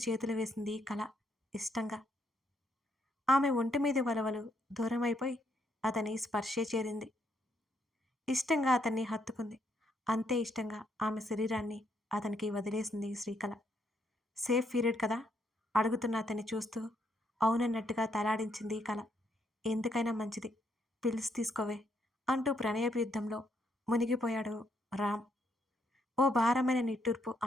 చేతులు వేసింది కళ ఇష్టంగా. ఆమె ఒంటి మీద వలవలు దూరమైపోయి అతని స్పర్శే చేరింది. ఇష్టంగా అతన్ని హత్తుకుంది. అంతే ఇష్టంగా ఆమె శరీరాన్ని అతనికి వదిలేసింది శ్రీకళ. సేఫ్ పీరియడ్ కదా అడుగుతున్న అతన్ని చూస్తూ అవునన్నట్టుగా తలాడించింది కళ. ఎందుకైనా మంచిది, పిల్స్ తీసుకోవే అంటూ ప్రణయపు యుద్ధంలో మునిగిపోయాడు రామ్. ఓ భారమైన నిట్టూర్పు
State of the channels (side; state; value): both; normal; correlation 0.75